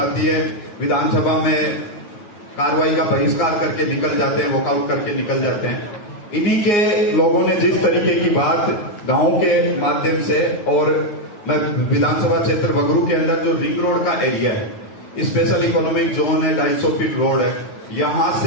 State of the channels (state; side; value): late; right; 9.6 ms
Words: है, विधानसभा में कार्रवाई का बहिष्कार करके निकल जाते हैं, वॉकआउट करके निकल जाते हैं। इन्हीं के लोगों ने जिस तरीके की बात गांव के माध्यम से, और मैं विधानसभा क्षेत्र बगरू के अंदर जो रिंग रोड का एरिया है, स्पेशल इकोनॉमिक जोन है, 250 फीट रोड है, यहां